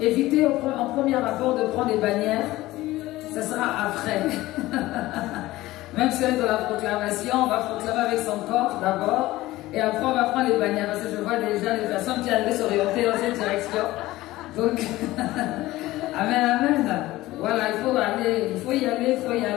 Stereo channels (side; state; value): right; quieter; 17.5 dB